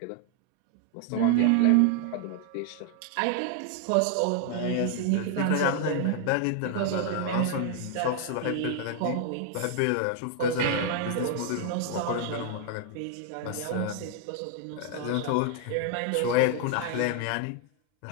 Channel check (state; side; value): different; both; correlation 0.00